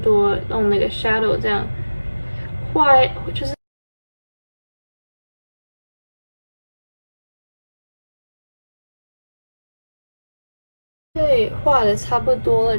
用那个 shadow 这样画，就是。对，画的差不多了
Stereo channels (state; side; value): inverted; both; correlation -1.00